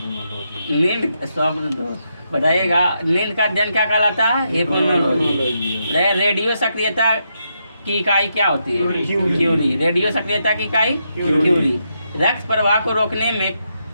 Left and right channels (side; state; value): both; inverted; correlation -0.81